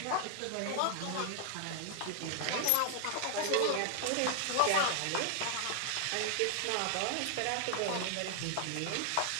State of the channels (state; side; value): different; both; correlation 0.00